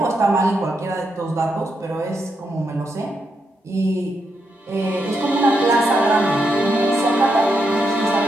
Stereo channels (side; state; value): both; normal; correlation 0.82